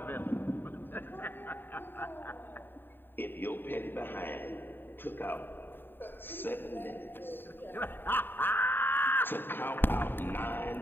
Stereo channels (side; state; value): right; late; 0.096 ms